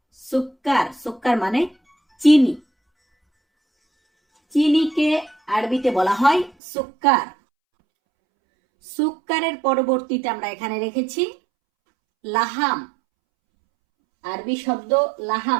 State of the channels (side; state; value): left; drops out; at 6.5 s